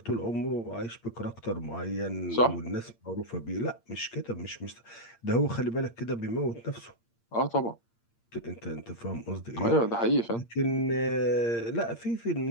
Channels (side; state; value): right; late; 8.7 ms